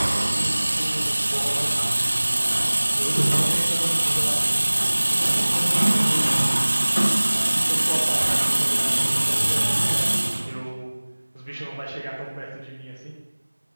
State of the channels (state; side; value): inverted; both; correlation -1.00